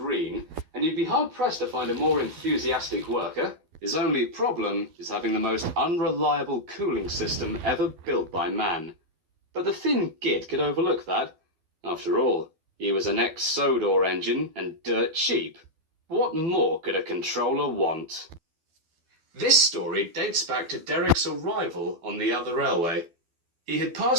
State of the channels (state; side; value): late; left; 12 ms